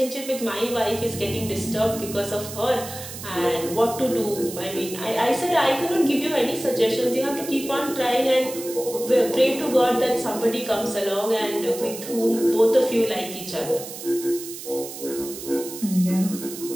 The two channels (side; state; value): right; noise; hiss, 11 dB below the sound